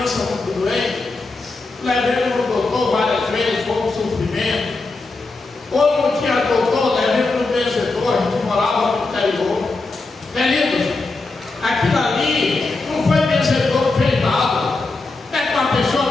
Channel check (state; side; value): quieter; right; 3.5 dB